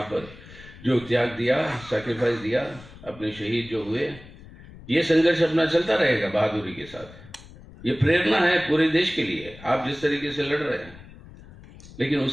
पर जो त्याग दिया, सैक्रिफाइस दिया, अपने शहीद जो हुए, ये संघर्ष अपना चलता रहेगा बहादुरी के साथ। ये प्रेरणा है पूरे देश के लिए, आप जिस तरीके से लड़ रहे हैं, लेकिन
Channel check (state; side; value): noise; left; rumble, 19 dB below the sound